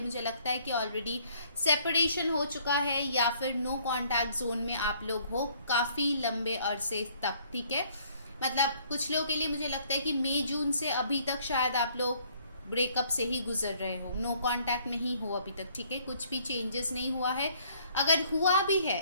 मुझे लगता है कि ऑलरेडी सेपरेशन हो चुका है या फिर नो कॉन्टैक्ट जोन में आप लोग हो काफ़ी लंबे अरसे तक, ठीक है। मतलब कुछ लोगों के लिए मुझे लगता है कि मई जून से अभी तक शायद आप लोग ब्रेकअप से ही गुजर रहे हो, नो कांटेक्ट में ही हो अभी तक, ठीक है। कुछ भी चेंजेस नहीं हुआ है। अगर हुआ भी है,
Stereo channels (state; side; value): inverted; both; correlation -0.62